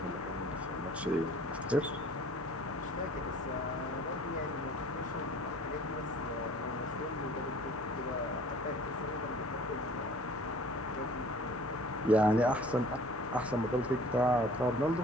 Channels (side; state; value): right; noise; hum, 21 dB below the sound